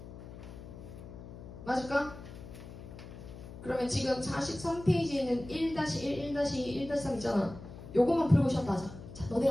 맞을까? 그러면 지금 43페이지에는 1-1, 1-2, 1-3 있잖아. 요것만 풀고 쉬었다 하자. 자, 너네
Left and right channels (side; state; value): left; noise; hum, 13 dB below the sound